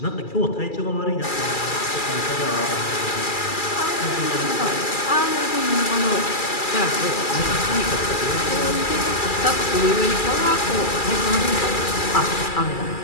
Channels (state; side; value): late; right; 2.3 ms